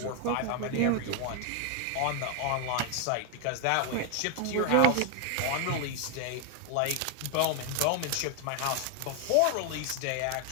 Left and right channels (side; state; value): both; different; correlation 0.00